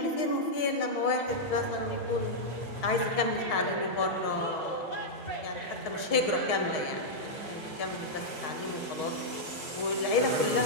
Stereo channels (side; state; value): right; late; 6.3 ms